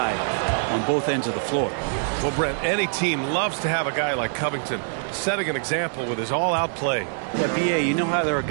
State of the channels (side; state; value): left; silent; digital silence